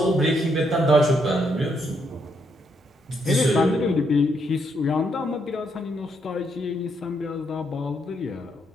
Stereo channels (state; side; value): normal; both; correlation 0.76